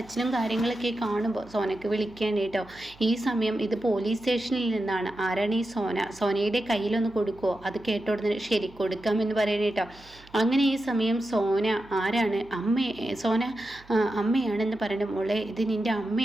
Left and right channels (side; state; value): right; noise; hum, 24 dB below the sound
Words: കാര്യങ്ങളൊക്കെ കാണുമ്പോൾ സോനയ്ക്ക് വിളിക്കുകയാണ് കേട്ടോ. ഈ സമയം ഇത് പോലീസ് സ്റ്റേഷനിൽ നിന്നാണ്. ആരാണ് ഈ സോനയുടെ കയ്യിലൊന്ന് കൊടുക്കുമോ? അത് കേട്ടോടുന്ന് ശരി കൊടുക്കാമെന്ന് പറയണേ കേട്ടോ. അങ്ങനെ ഈ സമയം സോന ആരാണ്? സോന അമ്മയാണ് എന്ന് പറഞ്ഞു. മോളെ, ഇത് നിൻ്റെ